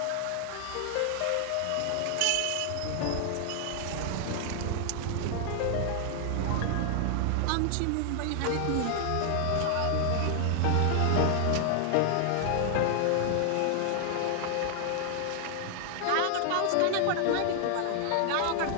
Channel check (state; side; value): different; both; correlation 0.00